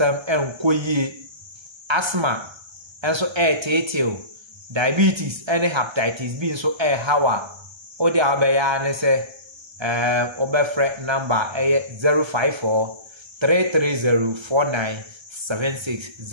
enkoyie asthma enso teteo diabetes and hepatitis B so how a odi abeya ne se obefre number 054 330 4976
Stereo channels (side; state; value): left; late; 1.3 ms